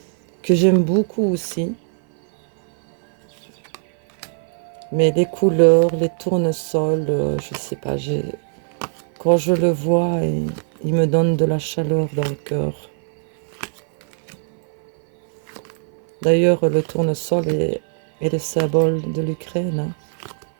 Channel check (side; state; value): left; silent; 58 dB below the other